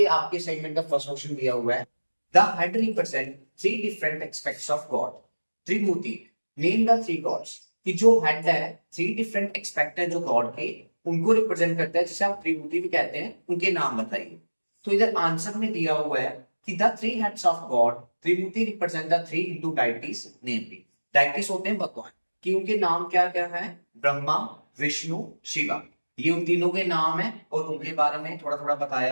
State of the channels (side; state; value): both; inverted; correlation -1.00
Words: आपके असाइनमेंट का फर्स्ट क्वेश्चन दिया हुआ है, the head represent three different aspects of God. Trimurti, name the three gods. कि जो हेड है, थ्री डिफरेंट एक्सपेक्ट है जो गॉड के, उनको रिप्रेजेंट करता है, जिसे आप त्रिमूर्ति भी कहते हैं। उनके नाम बताइए। तो इधर आंसर में दिया हुआ है कि the three heads of God Trimurti represent the three Hindu deities, namely deities होते हैं भगवान, कि उनके नाम क्या क्या है, ब्रह्मा, विष्णु, शिवा। ये उन तीनों के नाम है और उनके बारे में थोड़ा थोड़ा